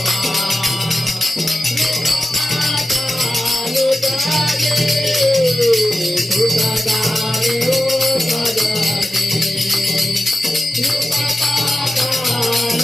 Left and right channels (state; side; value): normal; both; correlation 0.92